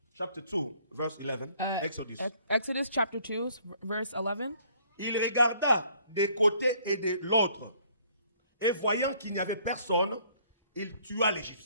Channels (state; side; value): inverted; both; correlation -0.61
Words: Chapter 2, verse 11. Exodus. Exodus chapter 2, verse 11. Il regarda des côtés et de l'autre. Et voyant qu'il n'y avait personne, il tua